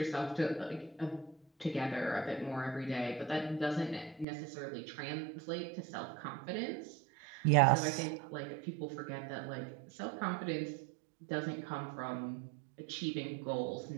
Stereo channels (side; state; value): left; drops out; at 4.2 s